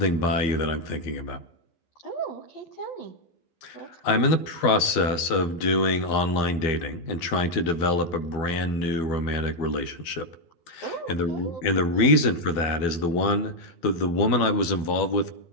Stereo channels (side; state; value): right; late; 12 ms